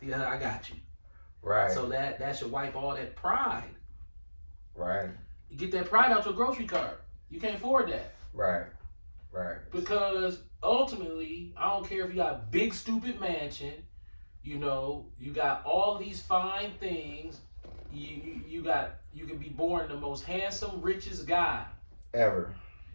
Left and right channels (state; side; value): inverted; both; correlation -1.00